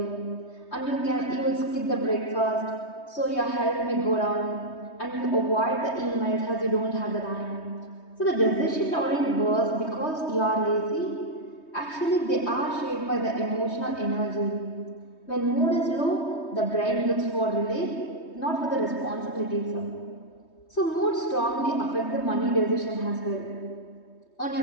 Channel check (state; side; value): late; right; 3.2 ms